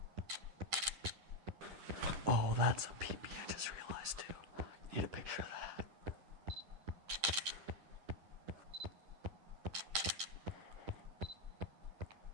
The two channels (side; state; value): left; late; 10 ms